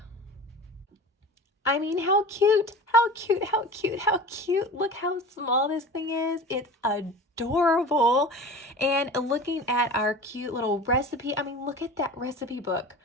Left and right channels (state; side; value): normal; both; correlation 0.36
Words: I mean, how cute, how cute, how cute, how cute. Look how small this thing is. It's adorable. And looking at our cute little recipe, I mean, look at that recipe book.